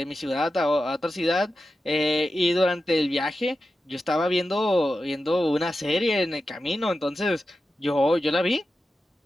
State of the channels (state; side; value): normal; both; correlation 0.91